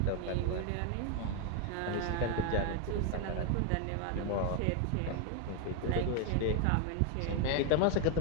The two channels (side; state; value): both; different; correlation 0.01